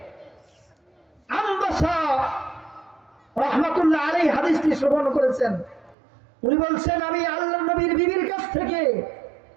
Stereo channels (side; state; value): left; drops out; at 6.0 s